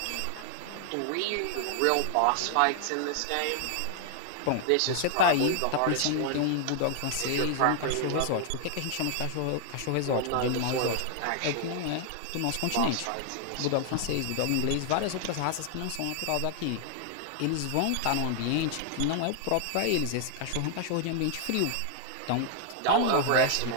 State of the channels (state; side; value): different; both; correlation 0.00